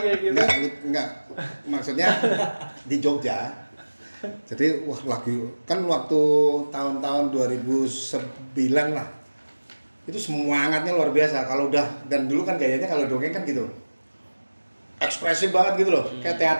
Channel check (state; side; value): inverted; both; correlation -1.00